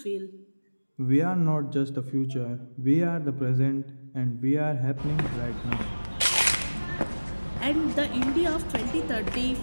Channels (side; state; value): both; inverted; correlation -1.00